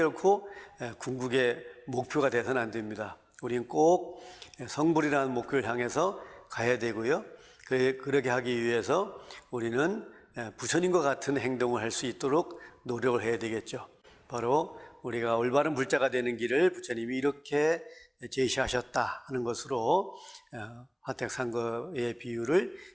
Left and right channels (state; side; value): identical; both; correlation 1.00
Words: 궁극의 목표가 되서는 안 됩니다. 우리는 꼭 성불이라는 목표를 향해서 가야 되고요. 그렇게 하기 위해서 우리는 부처님과 같은 행동을 할 수 있도록 노력을 해야 되겠죠. 바로 우리가 올바른 불자가 되는 길을 부처님이 이렇게 제시하셨다 하는 것으로 화택상거의 비유를